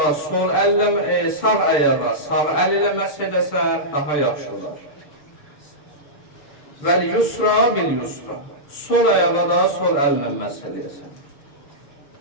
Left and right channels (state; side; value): late; right; 6.8 ms